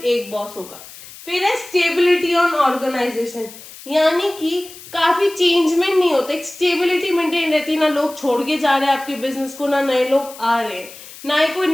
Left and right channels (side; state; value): left; noise; hiss, 17 dB below the sound